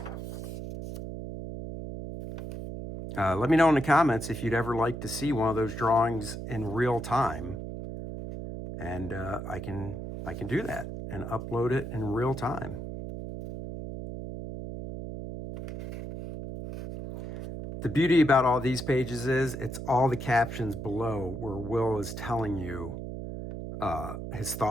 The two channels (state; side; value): noise; right; hum, 7 dB below the sound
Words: Let me know in the comments if you'd ever like to see one of those drawings in real time. And I can do that and upload it in real time. The beauty about all these pages is it's all the captions below where Will is telling you his